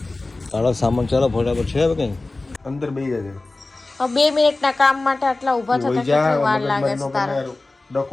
તારો સામાન ચાલો ફટાફટ છે હવે કઈ અંદર બેસી જાય. 2 મિનિટના કામ માટે આટલા ઊભા થતા કેટલી વાર લાગે છે તારા?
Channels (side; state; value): right; quieter; 3.2 dB